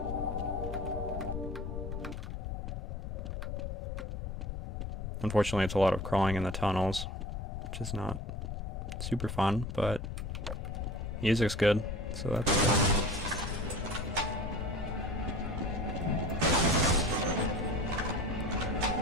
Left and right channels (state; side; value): noise; left; rumble, 5 dB below the sound